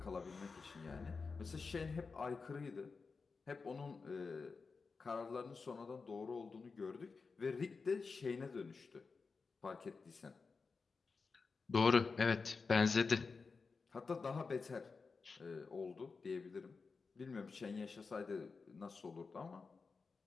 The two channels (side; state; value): right; quieter; 4.6 dB